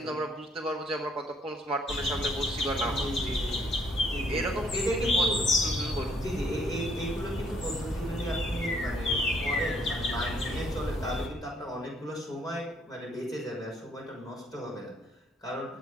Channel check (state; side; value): normal; both; correlation 0.66